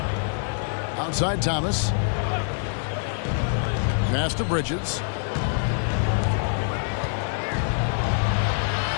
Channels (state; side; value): silent; right; digital silence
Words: Outside Thomas. Pass to Bridges.